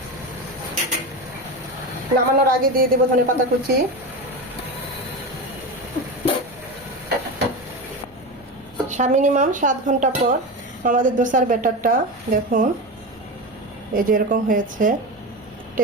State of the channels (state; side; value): normal; both; correlation 0.22